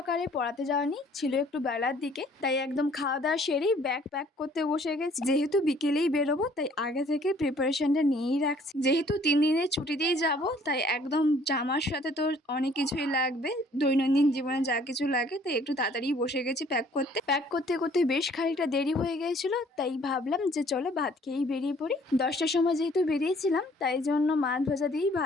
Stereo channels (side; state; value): both; normal; correlation 0.58